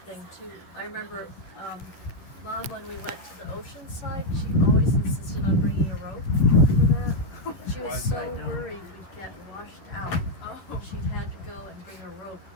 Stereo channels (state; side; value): late; right; 11 ms